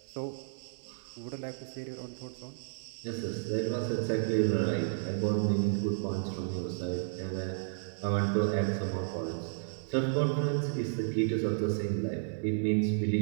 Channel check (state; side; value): silent; left; 56 dB below the other